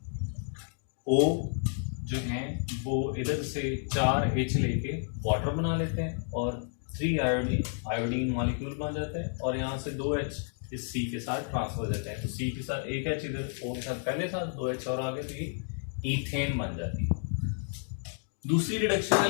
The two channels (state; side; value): silent; right; 57 dB below the other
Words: O जो हैं वो इधर से 4H लेके वाटर बना लेते हैं और 3 आयोडीन मॉलिक्यूल बन जाता है, और यहाँ से 2H इस C के साथ ट्रांसफर हो जाता है। तो C के साथ एक H इधर O के साथ पहले साथ 2H और आगे, तो ये ईथेन बन जाती है। दूसरी रिडक्शन